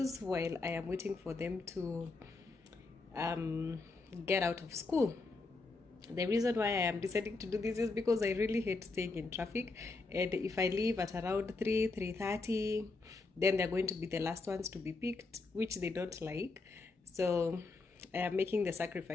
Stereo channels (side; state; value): right; quieter; 3.7 dB